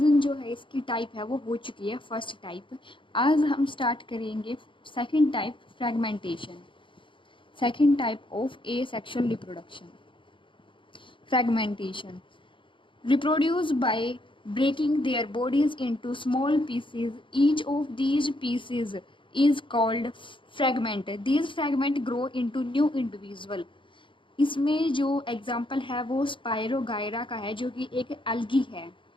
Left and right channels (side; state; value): right; late; 0.24 ms